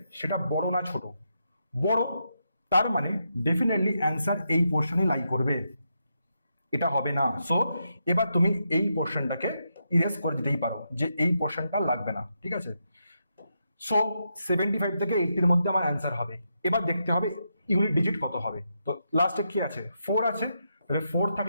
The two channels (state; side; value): inverted; both; correlation -0.83